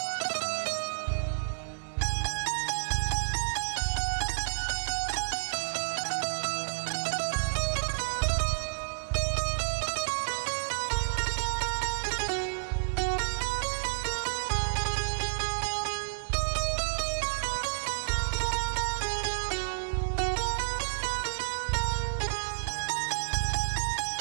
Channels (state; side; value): silent; left; digital silence